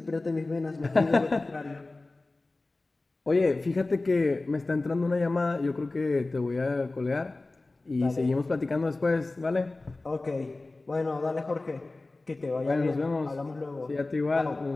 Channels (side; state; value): right; quieter; 3.2 dB